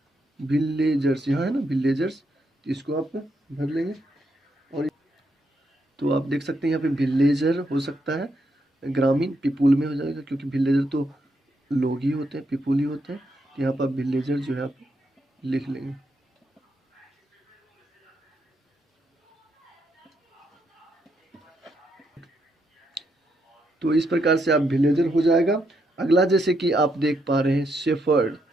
विलेजर्स यहाँ है ना विलेजर्स, तो इसको आप भर लेंगे। और तो आप देख सकते हैं यहाँ पे विलेजर हो सकता है ग्रामीण, पीपुल में हो जाएगा क्योंकि विलेजर तो लोग ही होते हैं, पीपुल ही होते हैं। तो यहाँ पर विलेजर जो है आप लिख लेंगे। तो इस प्रकार से आप विलेजर हो जाएगा। अगला जैसे कि आप देख पा रहे हैं शेफर्ड,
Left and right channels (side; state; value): both; normal; correlation 0.78